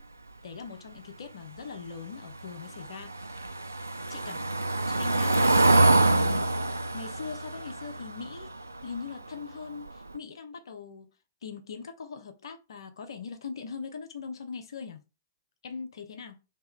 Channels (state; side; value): inverted; both; correlation -0.90